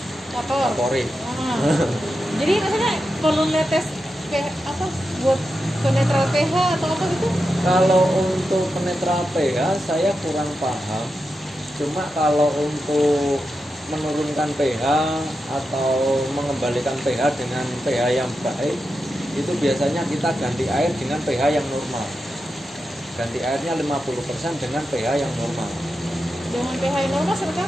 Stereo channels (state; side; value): normal; both; correlation 0.89